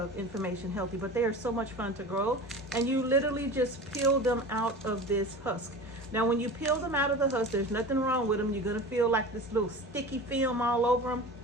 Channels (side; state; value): both; normal; correlation 0.34